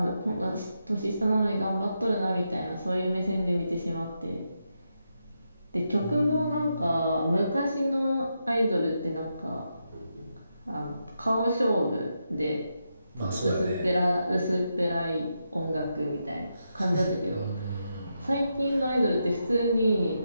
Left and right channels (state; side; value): inverted; both; correlation -0.84